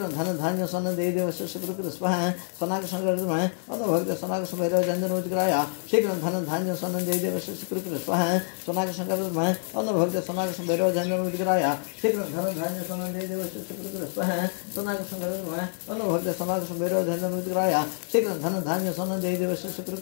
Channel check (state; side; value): silent; right; digital silence